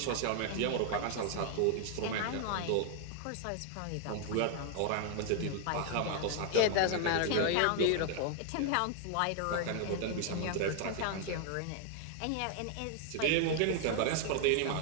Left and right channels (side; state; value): both; different; correlation 0.00